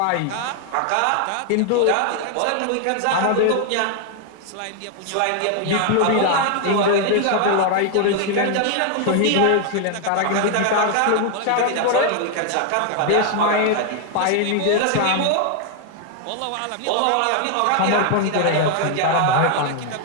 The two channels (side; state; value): both; different; correlation 0.00